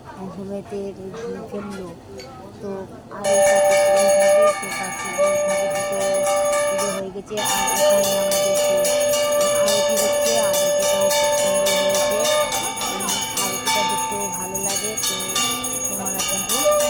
ঘুমেতে ফেললো, তো আর পুজো হয়ে গেছে। আর এখানে আমাদের আরতি হচ্ছে, আরতিটাও খুব সুন্দর হয়েছে, আরতিটা দেখতেও ভালো লাগে। তো তোমরা দেখো।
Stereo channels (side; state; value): both; identical; correlation 1.00